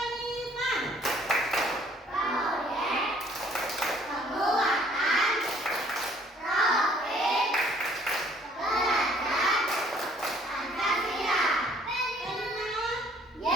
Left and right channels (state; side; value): normal; both; correlation 0.59